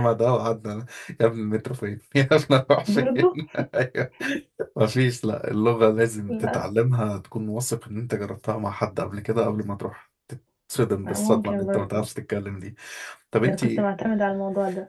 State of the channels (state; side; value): identical; both; correlation 1.00